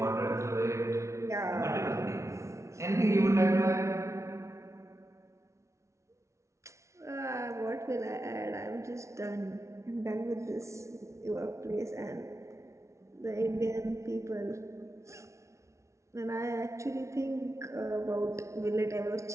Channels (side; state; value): left; late; 0.14 ms